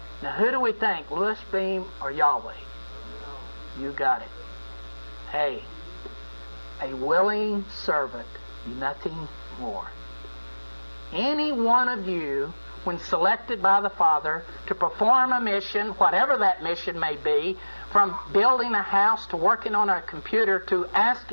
Now, who do we think, Louis Beam or Yahweh? You got it. Hey, a willing servant, nothing more. Any one of you, when selected by the Father to perform a mission, whatever that mission may be, from building a house to working on a computer to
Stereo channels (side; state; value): both; inverted; correlation -1.00